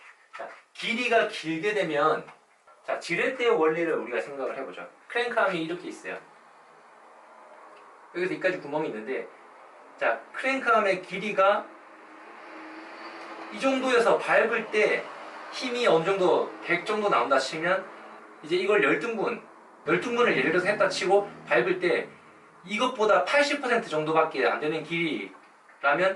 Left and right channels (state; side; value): identical; both; correlation 1.00